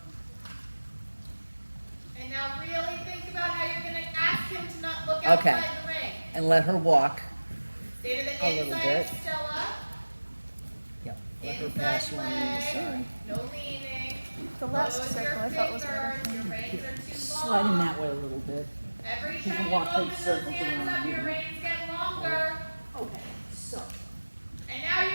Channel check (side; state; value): both; inverted; correlation -1.00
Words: And now really think about how you're going to ask him to not look Okay. outside the ring. And let her walk. Stay to the A little inside bit. of Stella. Yep. Let her Inside pass you on the leg. inside. No leaning. The last Close circle your I thought was better. fingers. Your reins are too long. Slide in that way a little bit. Every You time can you walk open big those circles hands around up, you. your reins get longer. Okay, so. And now you